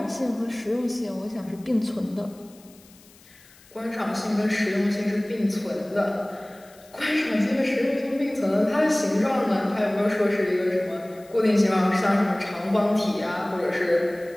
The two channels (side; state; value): left; noise; hiss, 26 dB below the sound